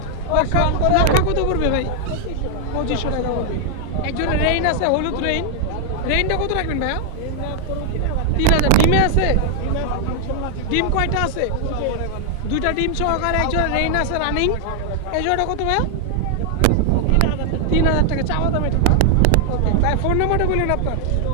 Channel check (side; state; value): both; different; correlation 0.00